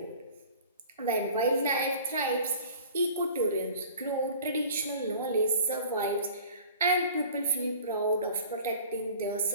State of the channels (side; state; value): both; inverted; correlation -0.45